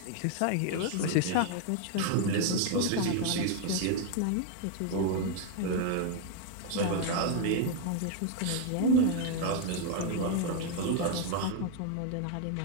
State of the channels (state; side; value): different; both; correlation 0.00